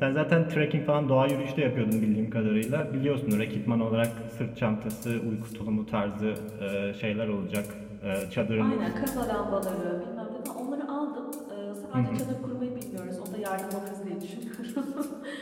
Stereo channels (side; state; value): both; identical; correlation 1.00